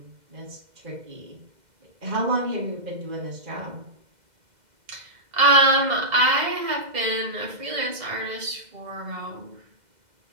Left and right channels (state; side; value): late; left; 2.1 ms